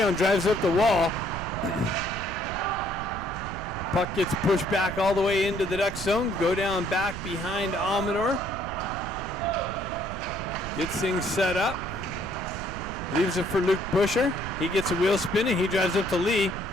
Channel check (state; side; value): noise; right; rumble, 9 dB below the sound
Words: drives up the wall. Puck gets pushed back all the way into the Ducks zone. Go down back behind Amador. Gets things set up. Leaves it for Luke Busher. He gets a wheel spinning. He drives up to Lee.